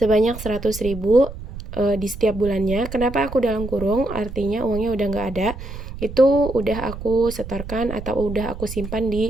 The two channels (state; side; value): noise; right; rumble, 10 dB below the sound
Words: 100.000 di setiap bulannya. Kenapa aku dalam kurung? Artinya uangnya udah nggak ada. Itu udah aku setorkan atau udah aku simpan